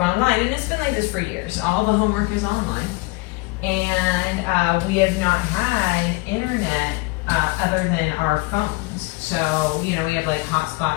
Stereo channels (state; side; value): quieter; right; 23.2 dB